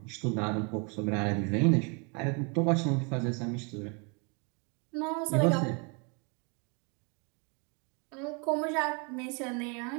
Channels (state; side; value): quieter; left; 34.1 dB